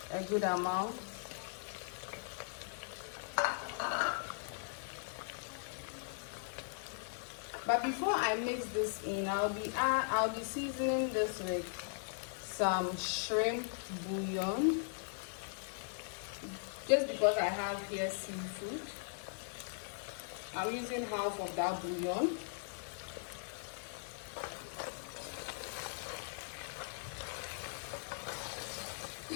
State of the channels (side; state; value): right; silent; digital silence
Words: a good amount. But before I mix this in, I'll be seasoning this with some shrimp bouillon. Just because I have here seafood, I'm using half of that bouillon.